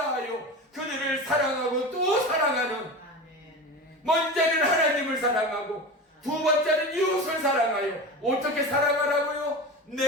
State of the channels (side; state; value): both; normal; correlation 0.27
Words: 그들을 사랑하고 또 사랑하는, 먼저는 하나님을 사랑하고 두 번째는 이웃을 사랑하여 어떻게 사랑하라고요?